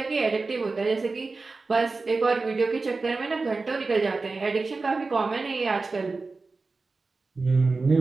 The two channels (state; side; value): quieter; left; 3.9 dB